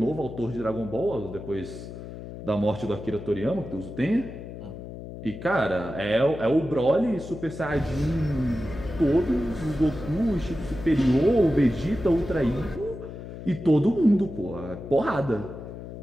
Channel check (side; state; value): left; noise; hum, 11 dB below the sound